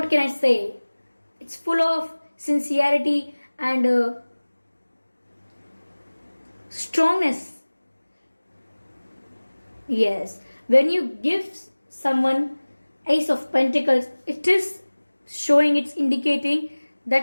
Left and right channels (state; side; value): inverted; both; correlation -1.00